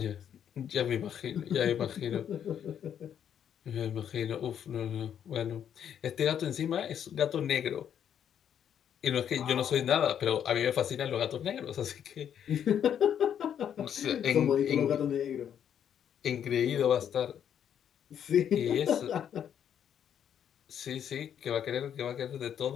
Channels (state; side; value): quieter; right; 9.1 dB